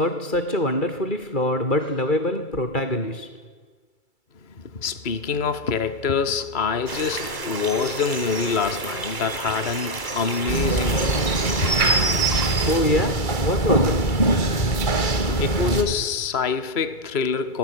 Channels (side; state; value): right; late; 2.3 ms